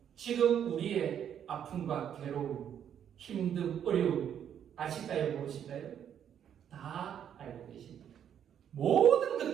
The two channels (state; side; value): quieter; left; 9.1 dB